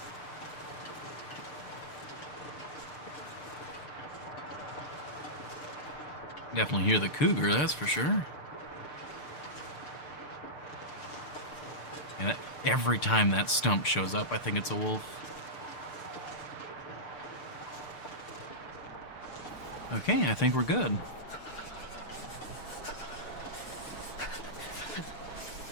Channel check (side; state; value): right; late; 6.7 ms